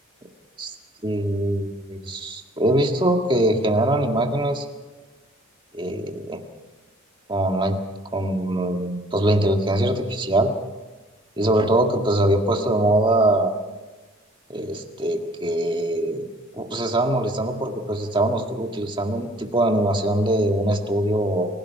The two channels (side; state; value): both; normal; correlation 0.56